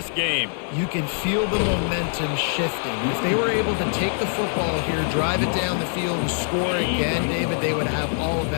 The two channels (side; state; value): right; silent; 62 dB below the other